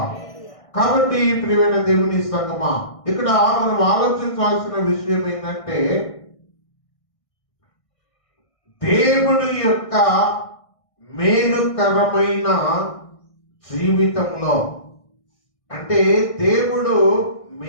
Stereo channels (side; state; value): right; late; 1.6 ms